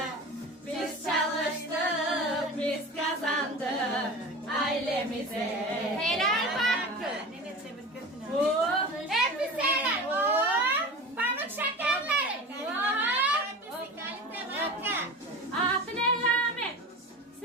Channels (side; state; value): both; normal; correlation 0.33